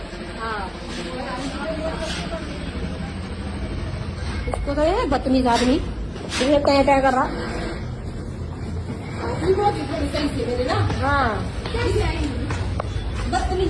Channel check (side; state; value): both; identical; correlation 1.00